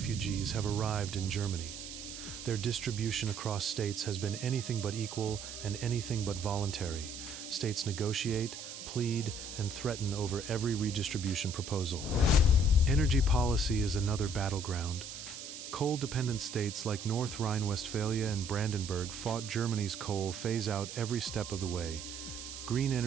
have arrived in Germany. Their distribution across states has been anything but equal and anything but voluntary. States negotiate, plead, and threaten over every redistribution proposal. Energy policy is another battleground. Coal-dependent states like North Rhine-Westphalia and Brandenburg fought Germany's coal phase-out every step of the way. Green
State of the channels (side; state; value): right; noise; hiss, 10 dB below the sound